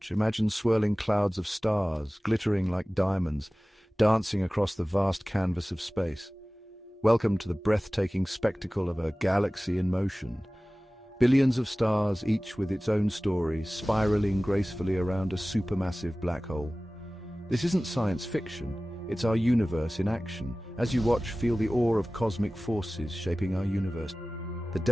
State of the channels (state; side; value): normal; both; correlation 0.98